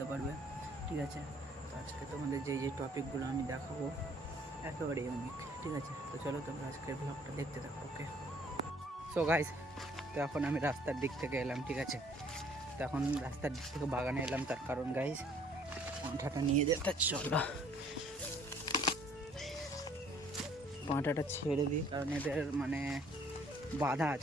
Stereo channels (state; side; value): normal; both; correlation 0.59